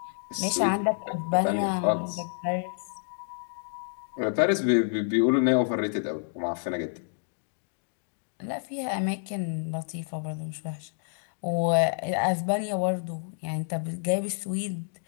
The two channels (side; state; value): right; silent; digital silence